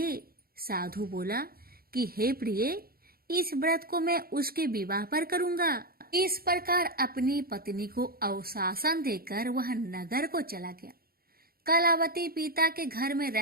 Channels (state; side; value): late; left; 0.44 ms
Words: साधु बोला कि हे प्रिय, इस व्रत को मैं उसके विवाह पर करूंगा। इस प्रकार अपनी पत्नी को अवशासन देकर वह नगर को चला गया। कलावती पिता के घर में